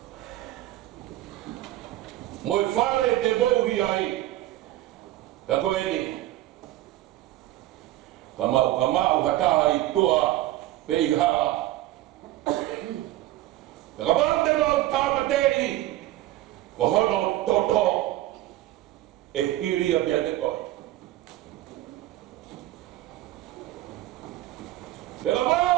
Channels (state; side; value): quieter; left; 15.3 dB